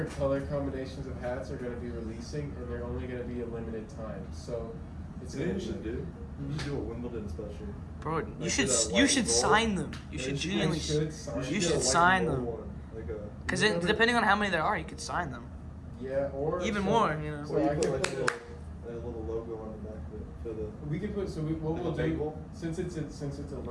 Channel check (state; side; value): identical; both; correlation 1.00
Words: color combinations of hats are going to be releasing, and they're only going to be a limited time. So, it's You know going what you should do? You should do a Wimbledon special. Bro, you Like should the you white should gold. sign them. You Yeah, should you should- genuinely. I should sign. You get should a white sign and them. gold one, like a. Because remember- depending on how many there are, you could sign them. Yeah, or Even so- more, you know. So Or you I put can like put a little logo on the back of it for the. we could put what Like we'll a do bagel? since it's a